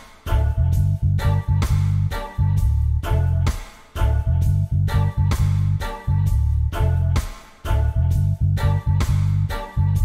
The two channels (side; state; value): both; identical; correlation 1.00